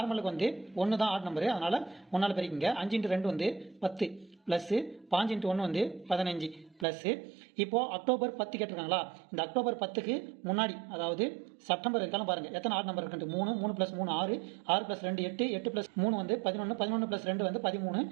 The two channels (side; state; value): left; drops out; at 6.9 s